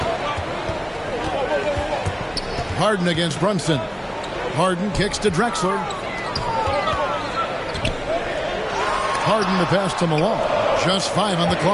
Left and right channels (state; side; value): identical; both; correlation 1.00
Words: Harden against Brunson. Harden kicks to Drexler. Harden the pass to Malone. Just 5 on the